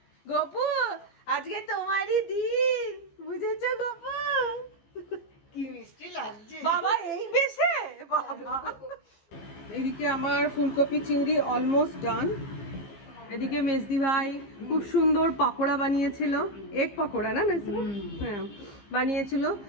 গোপু, আজকে তোমারই দিন, বুঝেছো গোপু? কি মিষ্টি লাগছে বাবা, এই বেশে বাবা। এদিকে আমার ফুলকপি চিংড়ি অলমোস্ট ডান। এদিকে মেজদি ভাই খুব সুন্দর পাকোড়া বানিয়েছিল, এগ পাকোড়া না মেজদি? হ্যাঁ, বানিয়েছিল।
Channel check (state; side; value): late; right; 15 ms